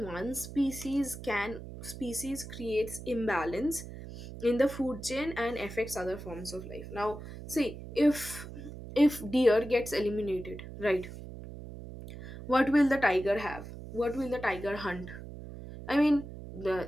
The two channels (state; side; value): noise; right; hum, 12 dB below the sound